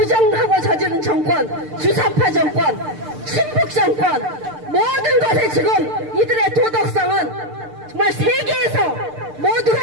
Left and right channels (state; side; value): late; left; 6.7 ms